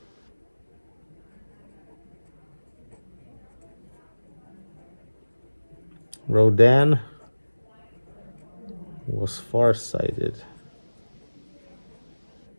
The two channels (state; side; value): inverted; both; correlation -1.00